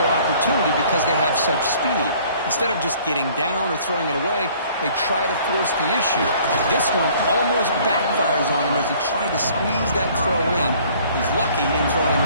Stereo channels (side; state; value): both; inverted; correlation -0.56